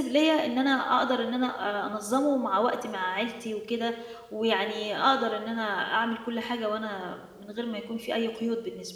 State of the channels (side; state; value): both; identical; correlation 1.00